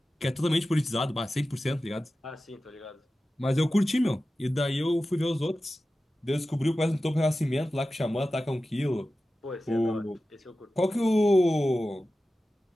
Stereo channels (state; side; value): normal; both; correlation 0.94